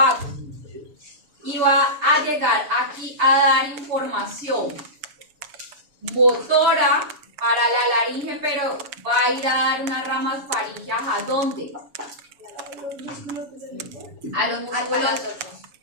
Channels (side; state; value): left; late; 7.1 ms